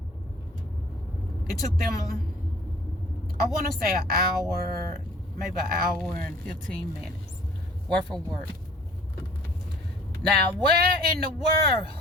It took them, I want to say an hour, maybe an hour and 15 minutes worth of work. Now, where in the world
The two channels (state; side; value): normal; both; correlation 0.52